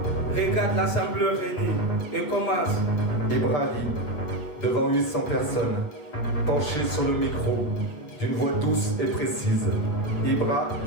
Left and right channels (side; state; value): right; late; 8.2 ms